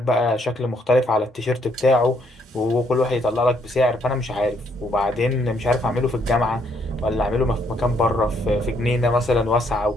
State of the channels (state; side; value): normal; both; correlation 0.71